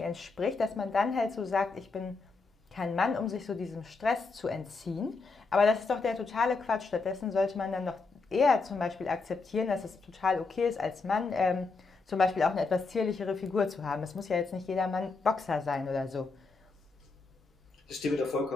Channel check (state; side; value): quieter; right; 4.1 dB